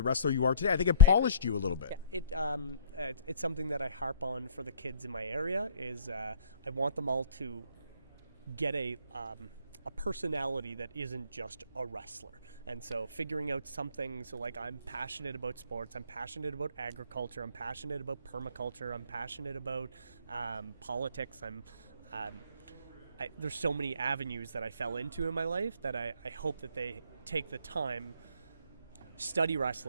wrestler you are today. I think it polished you a little bit. Yeah, it's something that I harp on for the kids in my area. Is I want them all to get a personality that isn't just a wrestler. And so figuring out something, so like I'm passionate about sports, I'm passionate about agriculture, I'm passionate about permaculture, I'm passionate about politics, there's so many avenues that I fell into in my life that I hope that they take the time, study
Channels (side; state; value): both; inverted; correlation -0.49